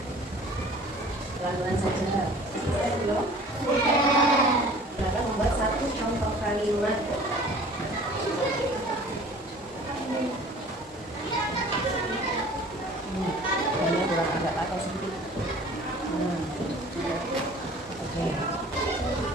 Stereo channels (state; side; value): normal; both; correlation 0.47